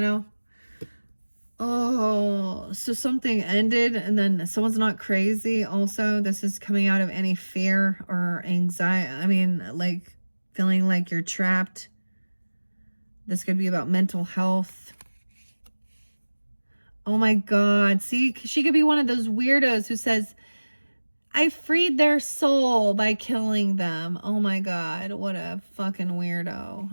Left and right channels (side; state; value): both; inverted; correlation -1.00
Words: Oh, so something ended and then someone's not crazy also. This is coming out of any fear or anxiety. I mean, like feeling like you're trapped. This could be about mental health. Oh my God. See, she could be one of those weirdos who says, I freed their soul by killing them. Oh my God. What a fucking weirdo,